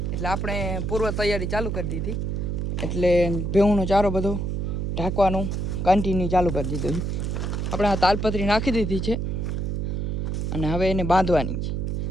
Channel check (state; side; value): noise; right; hum, 1 dB below the sound